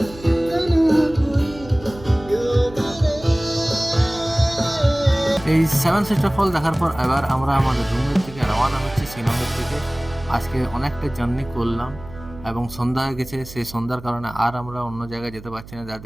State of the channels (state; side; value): noise; right; hum, 17 dB below the sound